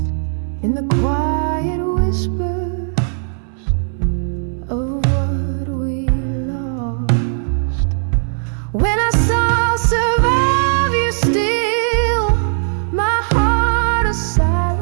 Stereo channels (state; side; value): silent; left; digital silence